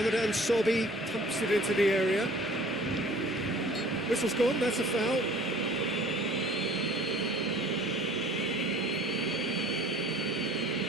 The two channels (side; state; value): both; normal; correlation 0.50